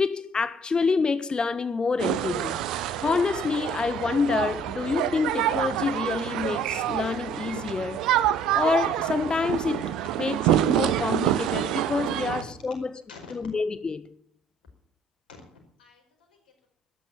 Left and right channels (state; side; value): normal; both; correlation 0.57